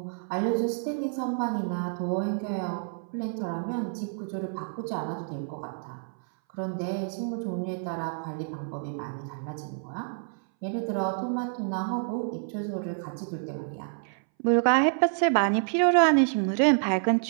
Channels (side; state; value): left; silent; 59 dB below the other